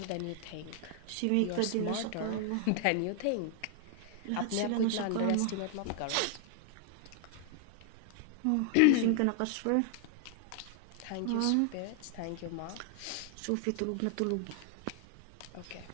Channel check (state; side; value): different; both; correlation 0.00